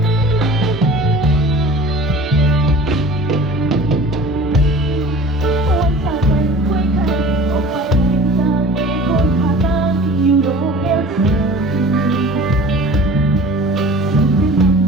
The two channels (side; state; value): both; normal; correlation 0.42